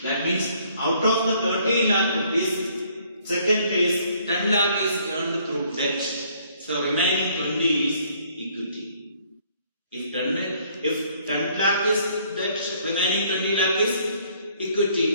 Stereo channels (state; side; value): inverted; both; correlation -0.63